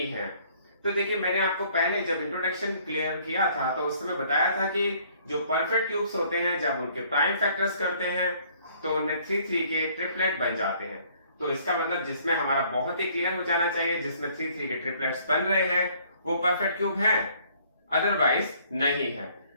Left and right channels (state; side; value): inverted; both; correlation -0.60